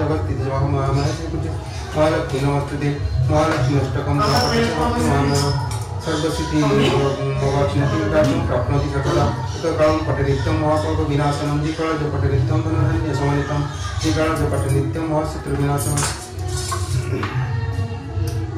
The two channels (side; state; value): both; identical; correlation 1.00